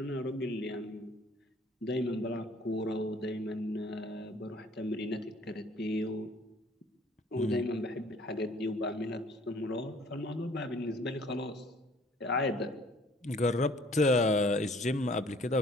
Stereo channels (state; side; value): normal; both; correlation 0.56